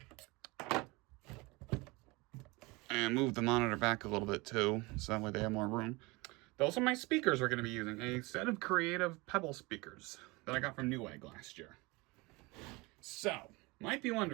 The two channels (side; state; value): left; quieter; 24.5 dB